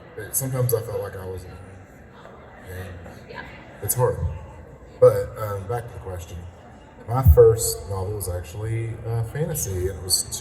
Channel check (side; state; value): both; identical; correlation 1.00